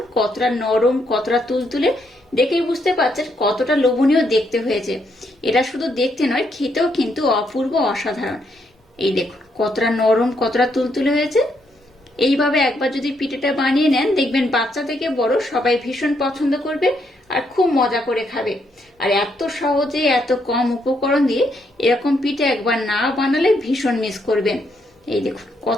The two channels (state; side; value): normal; both; correlation 0.76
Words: কতটা নরম কতটা তুলতুলে। দেখেই বুঝতে পারছেন কতটা লোভনীয় দেখতে হয়েছে। এটা শুধু দেখতে নয়, খেতেও কিন্তু অপূর্ব অসাধারণ। এই দেখুন কতটা নরম কতটা তুলতুলে হয়েছে। এইভাবে একবার যদি পিঠেটা বানিয়ে নেন দেখবেন বাচ্চা থেকে বড় সবাই ভীষণ পছন্দ করবে আর খুব মজা করে খাবে। আর এত সহজে এত কম উপকরণ দিয়ে এরকম পিঠে একবার না বানালে ভীষণ মিস করবেন। এই দেখুন